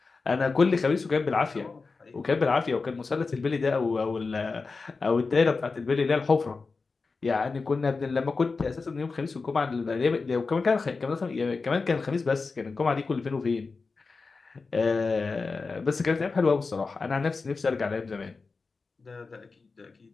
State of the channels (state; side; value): quieter; right; 4.3 dB